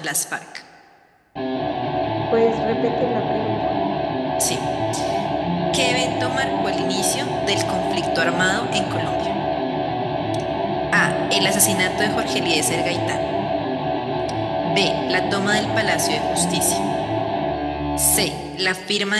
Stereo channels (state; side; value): identical; both; correlation 1.00